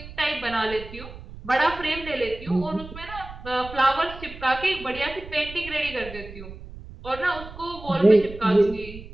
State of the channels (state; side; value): noise; right; rumble, 14 dB below the sound